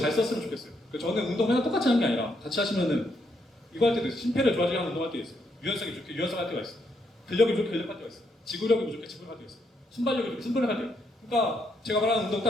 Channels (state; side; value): normal; both; correlation 0.76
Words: 썼으면 좋겠어요. 저는 운동 맨날 똑같이 하는 게 아니라 같이 하시면은 이거 할 때도 있어요. 심폐를 좋아지게 하는 운동 할 때 있어요. 유연성이 좋게 유연성 할 때가 있어요. 근력이 좋게 근력 할 때가 있어요. 지구력이 부족해 지구력 할 때가 있어요. 순발력이 좋게 순발력 할 때가. 그러니까 제가 말하는 운동